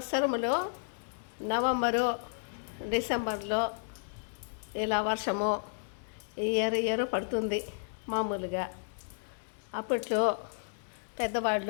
నవంబరు డిసెంబర్లో ఇలా వర్షము ఇయర్ పడుతుంది మామూలుగా. అప్పట్లో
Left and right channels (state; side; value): silent; right; 56 dB below the other